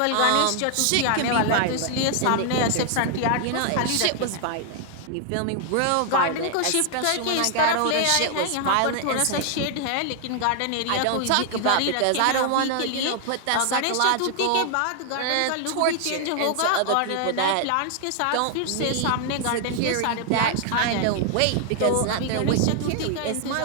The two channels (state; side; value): different; both; correlation 0.00